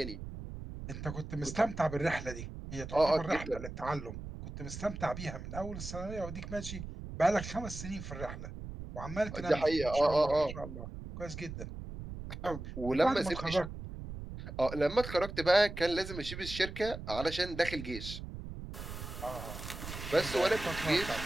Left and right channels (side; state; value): right; noise; rumble, 9 dB below the sound